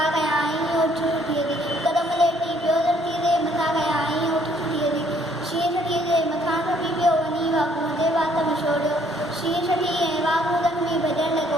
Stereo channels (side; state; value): both; normal; correlation 0.64